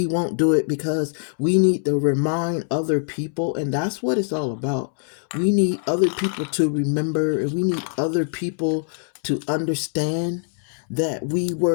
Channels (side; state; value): right; silent; 63 dB below the other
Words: won't do it because we need to remind other people, and that's what it's all about. We need other people to remember, and we need other people to understand that we